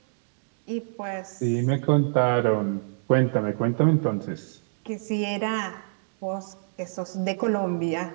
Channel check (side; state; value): left; silent; digital silence